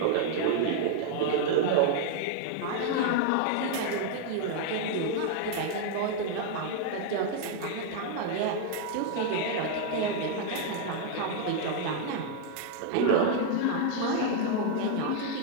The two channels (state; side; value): different; both; correlation 0.00